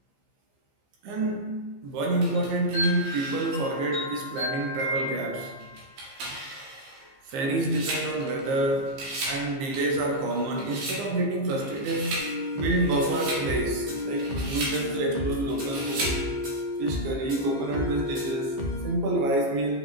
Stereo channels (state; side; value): late; left; 15 ms